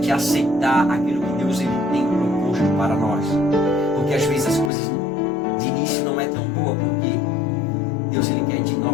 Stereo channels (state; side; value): drops out; right; at 4.7 s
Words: aceitar aquilo que Deus ele tem proposto para nós, porque às vezes as coisas de início não é tão boa, porque Deus ele quer de